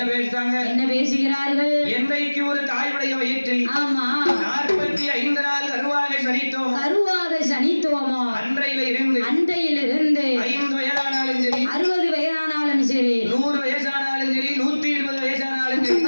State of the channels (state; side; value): inverted; both; correlation -1.00